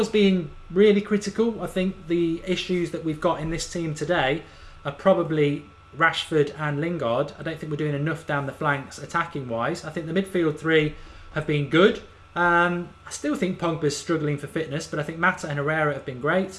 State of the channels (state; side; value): identical; both; correlation 1.00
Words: being really critical, I think the issues that we've got in this team today are probably Rashford and Lingard. I don't think we're doing enough down the flanks attacking wise. I think the midfield 3 have been good. I still think Pogba's struggling for fitness, but I think Mata and Herrera have been